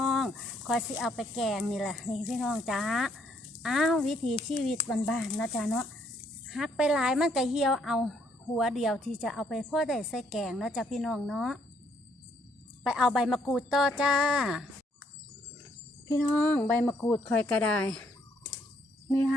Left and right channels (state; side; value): normal; both; correlation 0.70